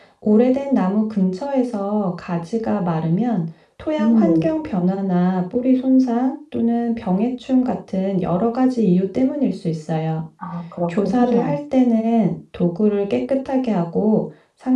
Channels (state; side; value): identical; both; correlation 1.00